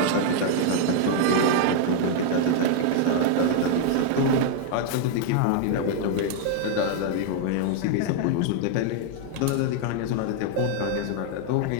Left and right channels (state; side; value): different; both; correlation 0.00